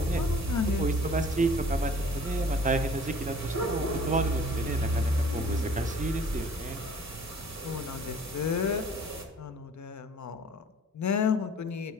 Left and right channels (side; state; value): both; normal; correlation 0.51